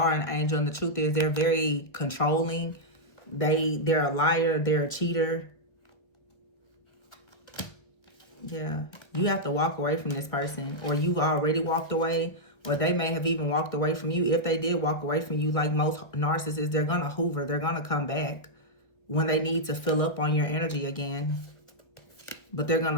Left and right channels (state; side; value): late; right; 1.5 ms